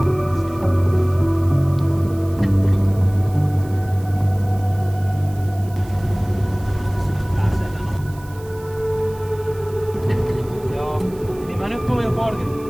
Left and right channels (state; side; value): noise; right; hiss, 23 dB below the sound